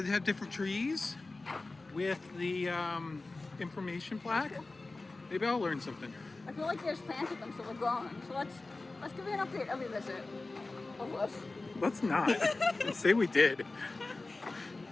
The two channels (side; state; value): right; quieter; 3.3 dB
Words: have different trees with the information plaque. Maybe I'll learn something. I feel like they just planted them, so they're gone. So let's give you an update every visit of this. Let's not. Let's say we did.